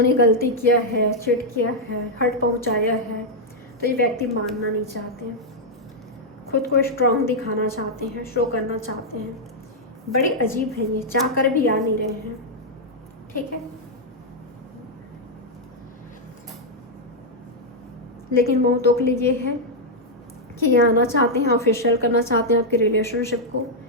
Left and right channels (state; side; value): normal; both; correlation -0.04